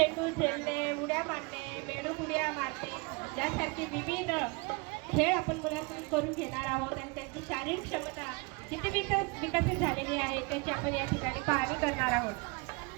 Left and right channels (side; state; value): left; quieter; 29.0 dB